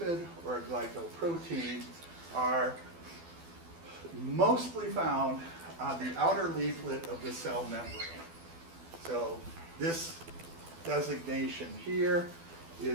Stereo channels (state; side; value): late; left; 12 ms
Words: or a glycoprotein, are mostly found on the outer leaflet of the cell membrane. So this designation here